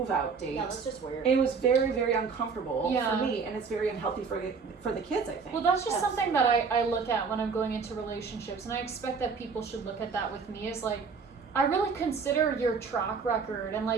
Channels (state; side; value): quieter; left; 5.3 dB